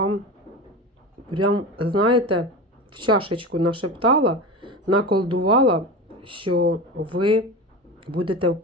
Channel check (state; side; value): normal; both; correlation 0.26